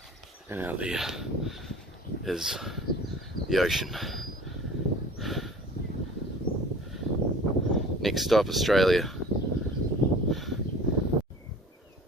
And out there is the ocean. Next stop, Australia.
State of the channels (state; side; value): normal; both; correlation 0.44